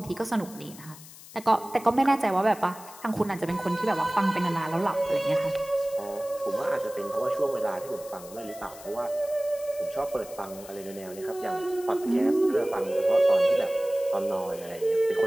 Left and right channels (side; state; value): left; noise; hiss, 18 dB below the sound